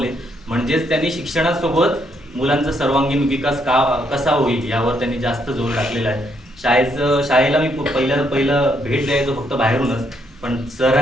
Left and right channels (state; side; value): normal; both; correlation 0.74